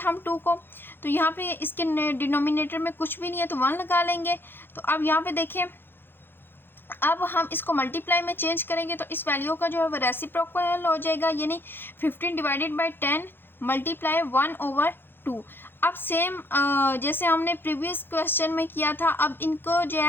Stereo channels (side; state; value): right; late; 0.10 ms